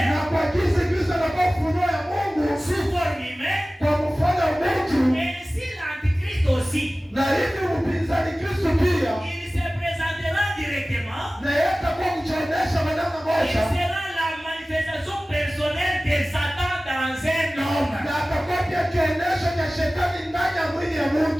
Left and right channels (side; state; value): both; normal; correlation 0.97